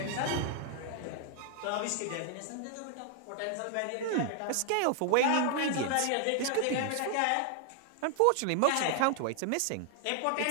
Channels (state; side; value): different; both; correlation 0.00